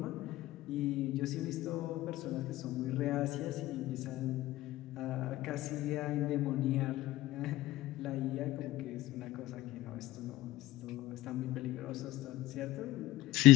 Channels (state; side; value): quieter; right; 16.4 dB